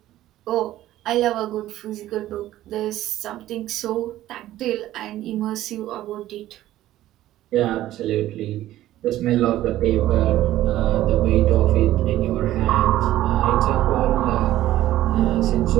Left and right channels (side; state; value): left; quieter; 14.3 dB